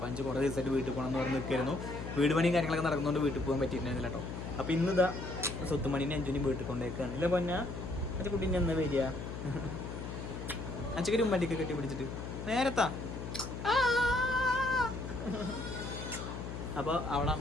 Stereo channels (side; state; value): left; noise; hum, 7 dB below the sound